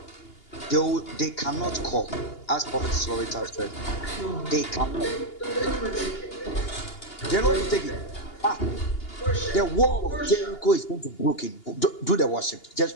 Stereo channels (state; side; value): late; right; 2.8 ms